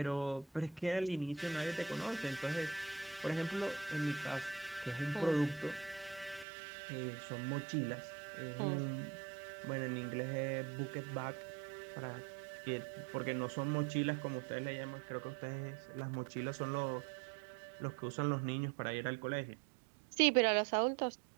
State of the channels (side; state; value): left; drops out; at 6.5 s